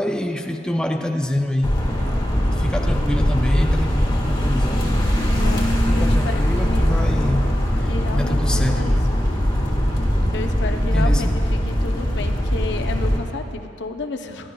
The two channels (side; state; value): both; normal; correlation 0.92